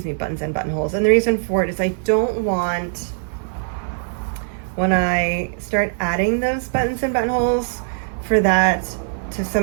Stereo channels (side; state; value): left; silent; 56 dB below the other